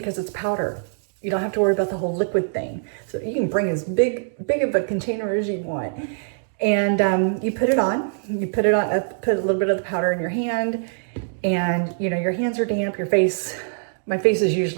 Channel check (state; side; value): silent; left; digital silence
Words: it's powder. You don't have to worry about the whole liquid thing. So you can bring as big of a container as you want. And you put it on, put a little bit of the powder in your hand, and you know, your hands are damp, my face is